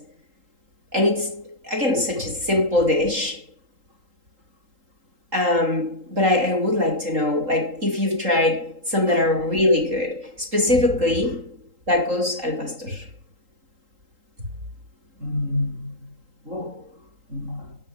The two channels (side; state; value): left; late; 3.8 ms